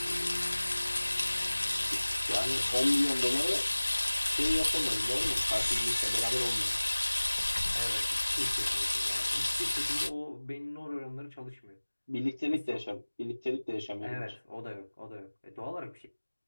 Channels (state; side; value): inverted; both; correlation -1.00